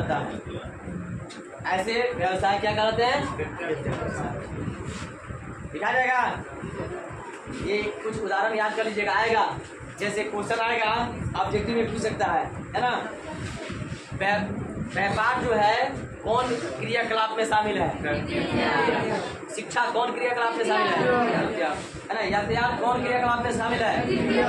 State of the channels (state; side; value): identical; both; correlation 1.00